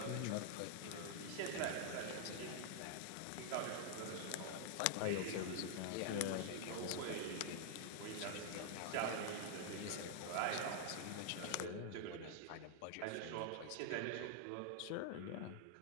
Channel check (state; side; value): different; both; correlation 0.00